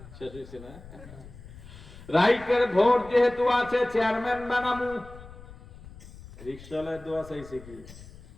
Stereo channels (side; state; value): left; noise; rumble, 18 dB below the sound